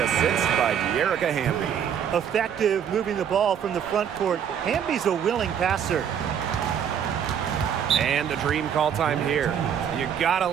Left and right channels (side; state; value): left; quieter; 8.5 dB